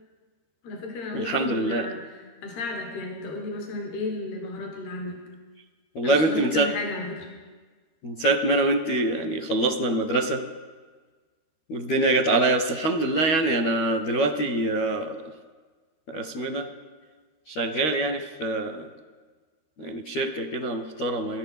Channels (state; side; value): late; right; 13 ms